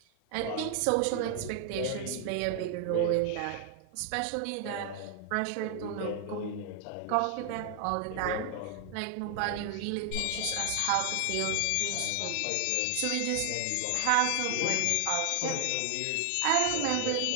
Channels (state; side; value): different; both; correlation 0.00